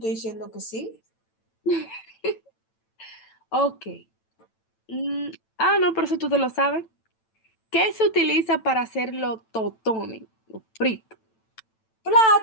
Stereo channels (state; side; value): late; right; 9.0 ms